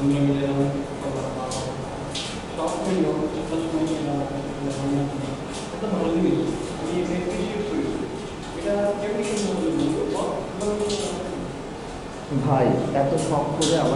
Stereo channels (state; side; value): identical; both; correlation 1.00